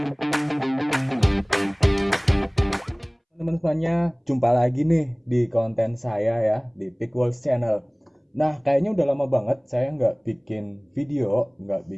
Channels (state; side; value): identical; both; correlation 1.00